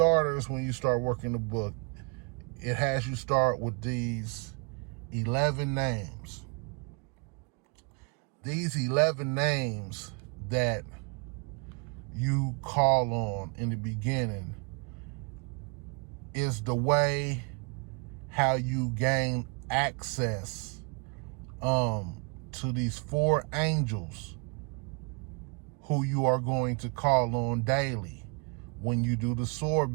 when you start working the book, it has you start with these 11 names. These 11 names that you call on in the beginning is the way how you gain access to these 4 angels who you are going to call on daily when you do the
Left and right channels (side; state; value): left; quieter; 34.9 dB